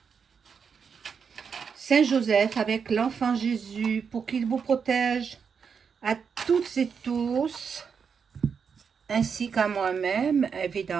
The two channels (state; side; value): quieter; left; 6.3 dB